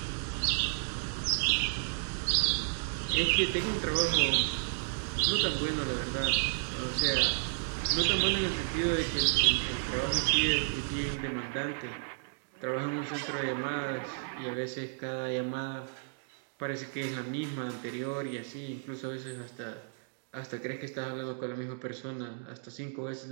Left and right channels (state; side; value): silent; left; digital silence